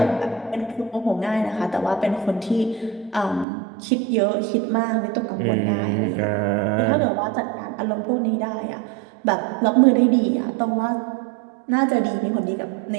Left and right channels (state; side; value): drops out; left; at 3.5 s